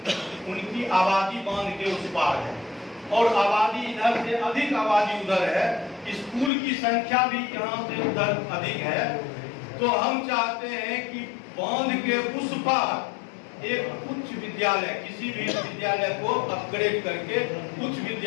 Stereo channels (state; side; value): drops out; right; at 6.5 s